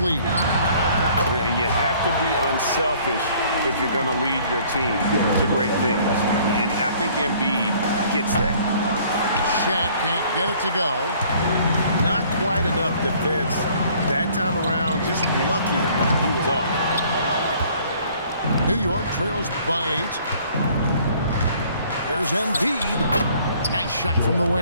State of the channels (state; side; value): inverted; both; correlation -0.57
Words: And you have to be unselfish if you're going to lead your team to great things. And I think Embiid gets that. Shaq can't get it to go. Not quite enough defense that time around. Just lucky he was off. New York trails by 8. Here's Embiid. Nice shot from the